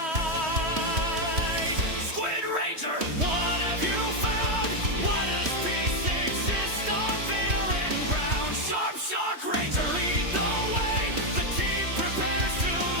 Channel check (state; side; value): late; left; 3.1 ms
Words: Squid Ranger, what have you found? Why does peace exist on barren ground? Shark Ranger, lead the way. The team prepares to